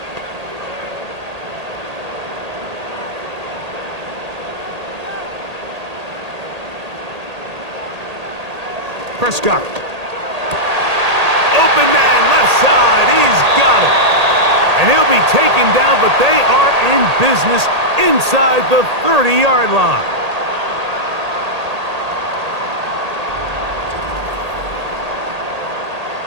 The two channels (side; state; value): left; late; 1.8 ms